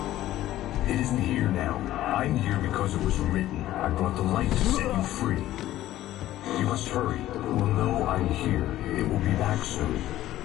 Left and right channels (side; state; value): right; quieter; 14.2 dB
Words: It isn't here now. I'm here because it was written. I brought the light to set you free. You must hurry. It will know I'm here. It will be back soon.